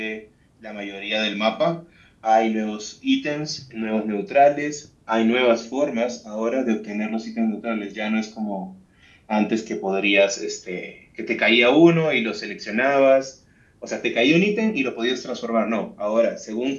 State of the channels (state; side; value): identical; both; correlation 1.00